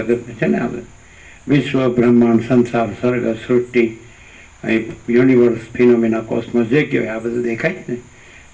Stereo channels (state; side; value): identical; both; correlation 1.00